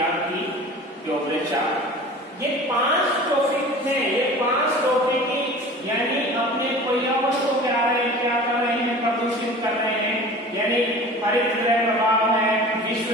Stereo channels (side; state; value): both; normal; correlation 0.40